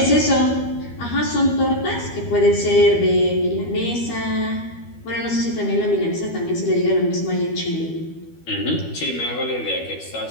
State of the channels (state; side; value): late; right; 12 ms